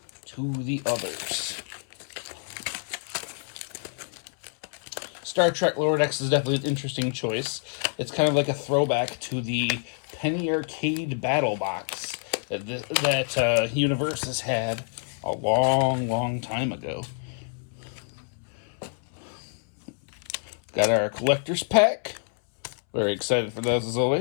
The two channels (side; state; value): right; silent; 60 dB below the other